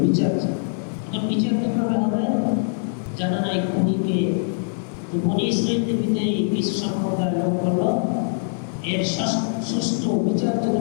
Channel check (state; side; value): silent; right; digital silence